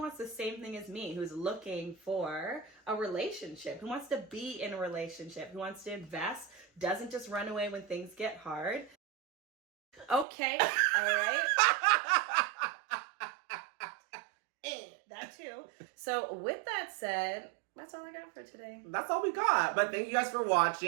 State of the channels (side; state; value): left; drops out; at 10.2 s